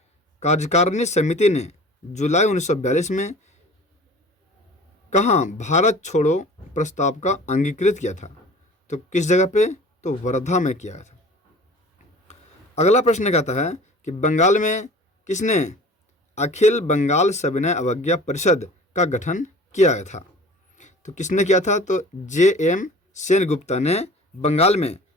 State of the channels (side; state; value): both; normal; correlation 0.43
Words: कार्यकारिणी समिति ने जुलाई 1942 में कहाँ भारत छोड़ो प्रस्ताव का अंगीकृत किया था। तो किस जगह पे। तो वर्धा में किया था। अगला प्रश्न कहता है कि बंगाल में किसने अखिल बंगाल सविनय अवज्ञा परिषद का गठन किया था। तो किसने किया था। तो JM सेनगुप्ता ने बंगाल में